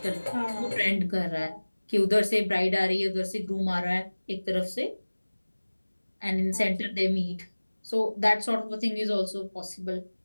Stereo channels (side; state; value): both; inverted; correlation -1.00